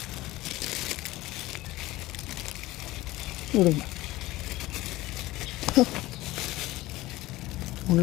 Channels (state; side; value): quieter; right; 18.1 dB